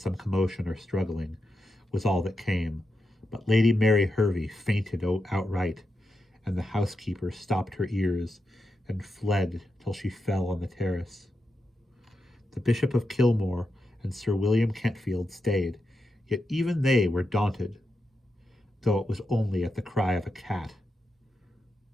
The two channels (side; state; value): both; normal; correlation 0.87